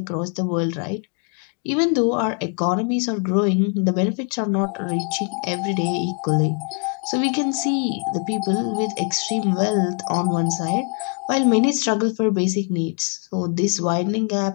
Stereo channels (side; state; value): right; quieter; 38.4 dB